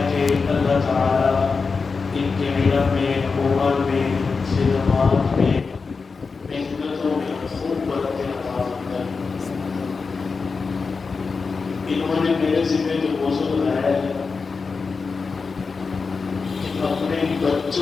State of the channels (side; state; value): right; quieter; 4.7 dB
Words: کہ اللہ تعالیٰ ان کے علم میں، عمر میں، خدمات میں، محنتوں میں خوب برکت عطا فرمائے. انہوں نے میرے ذمہ جو موضوع لایا ہے اپنے